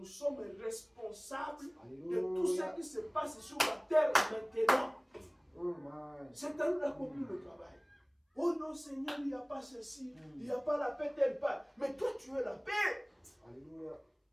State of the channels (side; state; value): both; identical; correlation 1.00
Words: sommes responsables de tout ce Alléluia. qui se passe sur la terre maintenant. Oh my. C'est à nous d'accomplir le travail. Oh non, Seigneur, il n'y a pas ceci, il n'y a pas la paix telle part. Mais toi, tu es la paix. Alléluia.